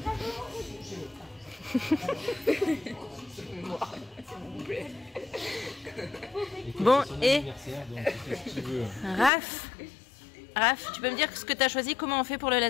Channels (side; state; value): right; drops out; at 9.3 s